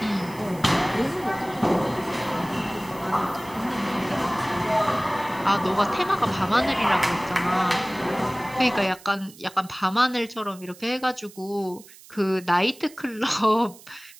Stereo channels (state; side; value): noise; right; hiss, 21 dB below the sound